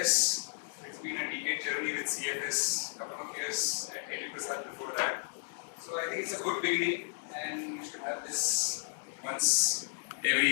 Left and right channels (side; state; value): right; silent; 55 dB below the other